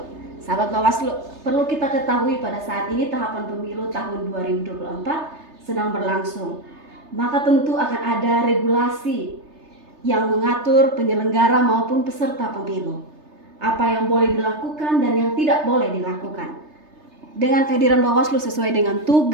Sahabat Bawaslu, perlu kita ketahui pada saat ini tahapan pemilu tahun 2024 sedang berlangsung. Maka tentu akan ada regulasi yang mengatur penyelenggara maupun peserta pemilu. Apa yang boleh dilakukan dan yang tidak boleh dilakukan. Dengan kehadiran Bawaslu sesuai dengan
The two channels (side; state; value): left; late; 3.3 ms